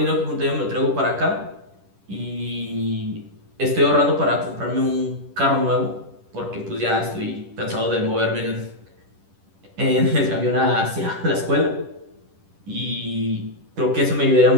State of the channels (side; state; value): left; late; 10 ms